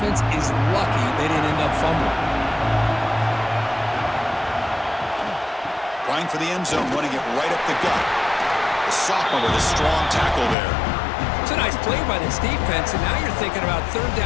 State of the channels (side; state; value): right; drops out; at 10.6 s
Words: is lucky they didn't end up fumbling. Trying for the end zone, running it right up the gut. The sophomore with a strong tackle there. It's a nice play by this defense, and now you're thinking about 3rd